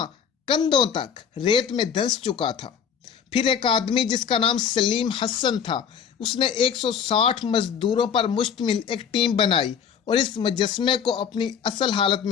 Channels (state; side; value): quieter; right; 7.4 dB